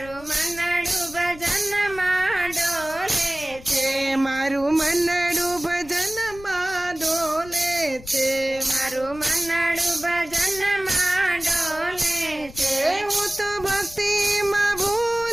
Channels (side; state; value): left; noise; rumble, 18 dB below the sound